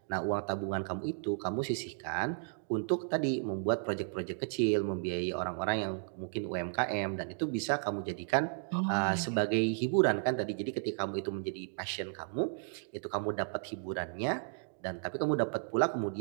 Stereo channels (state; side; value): silent; left; digital silence